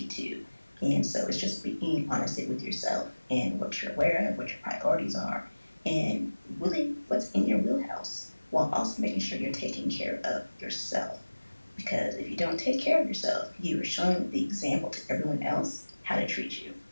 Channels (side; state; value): both; inverted; correlation -1.00